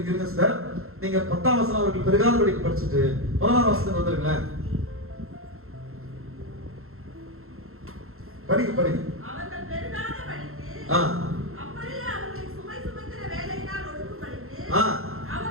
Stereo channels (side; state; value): left; late; 0.62 ms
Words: சார், நீங்க 10ஆம் வசனம் அவர்கள் பெருகாத படிக்கு படிச்சுட்டு 16ஆம் வசனத்துக்கு வந்துருங்களேன். படிங்க. அவர்கள் பெருகாத படிக்கு, அப்படியே அவர்களை சுமை சுமக்கிற வேலையினால் ஒடுக்கும்படிக்கு